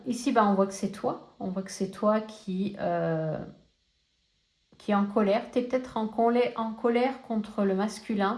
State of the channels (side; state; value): both; identical; correlation 1.00